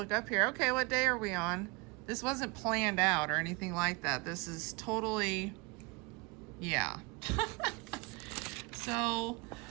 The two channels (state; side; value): quieter; left; 27.5 dB